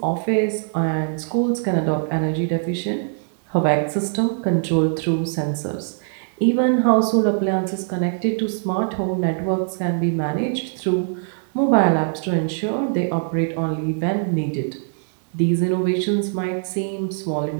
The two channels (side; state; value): left; silent; digital silence